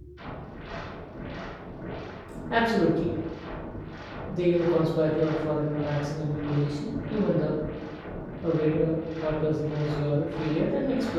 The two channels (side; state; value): both; identical; correlation 1.00